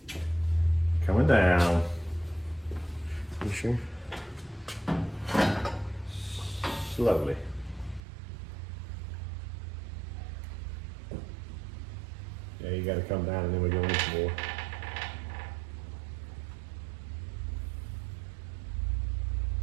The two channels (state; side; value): drops out; left; at 8.0 s